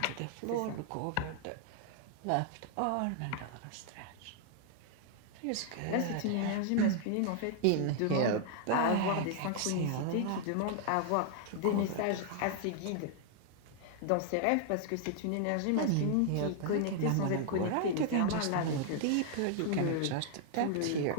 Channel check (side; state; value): both; different; correlation -0.01